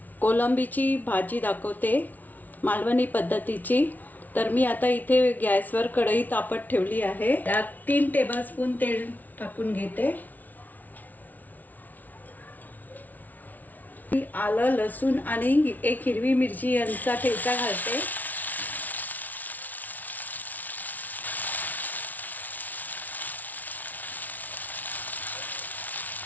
कोलंबीची भाजी दाखवते, मालवणी पद्धतीची। तर मी आता इथे गॅसवर कढई तापत ठेवली आहे। त्यात 3 टेबलस्पून तेल टाकून घेते। आलं, लसूण आणि 1 हिरवी मिरची यांचा ठेचा घालते।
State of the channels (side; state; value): right; late; 0.078 ms